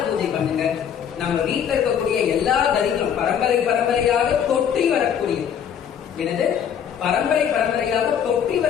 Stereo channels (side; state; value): right; quieter; 8.4 dB